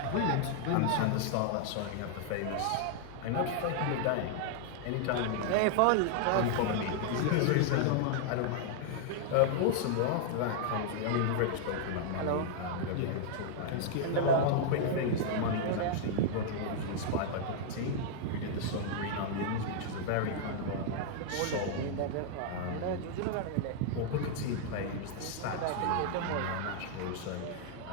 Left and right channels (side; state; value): both; different; correlation -0.01